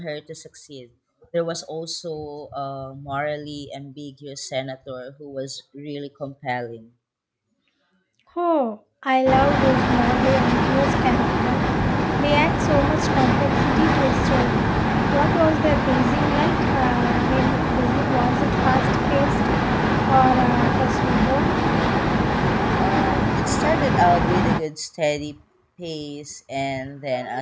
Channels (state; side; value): identical; both; correlation 1.00